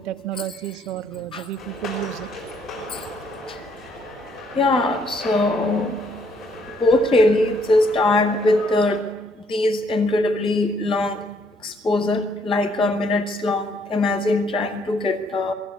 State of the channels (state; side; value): normal; both; correlation 0.68